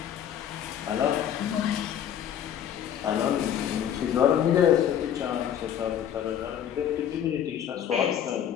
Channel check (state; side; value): quieter; right; 9.7 dB